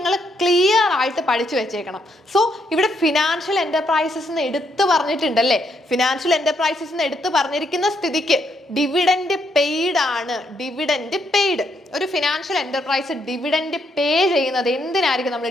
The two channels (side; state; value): both; normal; correlation 0.75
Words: ക്ലിയർ ആയിട്ട് പഠിച്ചു വെച്ചേക്കണം. സോ ഇവിടെ ഫിനാൻഷ്യൽ എന്റർപ്രൈസസ് എന്ന് എടുത്തു പറഞ്ഞിട്ടുണ്ടല്ലേ. ഫിനാൻഷ്യൽ എന്റർപ്രൈസസ് എന്ന് എടുത്തു പറഞ്ഞിരിക്കുന്ന സ്ഥിതിക്ക് ഡിവിഡൻഡ് പെയ്ഡ് ആണ്. Dividend paid. ഒരു ഫിനാൻഷ്യൽ എന്റർപ്രൈസ് ഡിവിഡൻഡ് പേ ചെയ്യുന്നത് എന്തിനായിരിക്കും നമ്മൾ